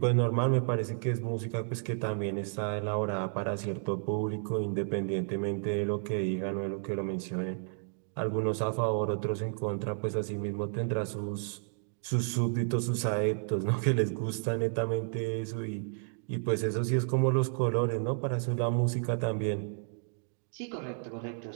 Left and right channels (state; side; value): silent; left; digital silence